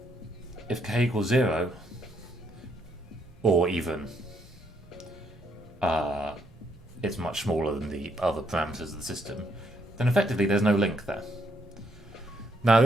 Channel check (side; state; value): both; normal; correlation 0.73